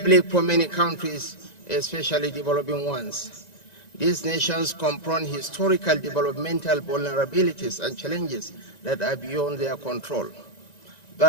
bleak for many countries, especially developing ones. These nations confront historical developmental vulnerabilities and challenges that are beyond their control.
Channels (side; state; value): right; late; 1.9 ms